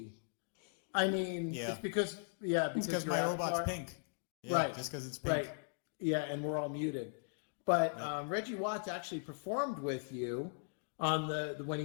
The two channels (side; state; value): right; silent; digital silence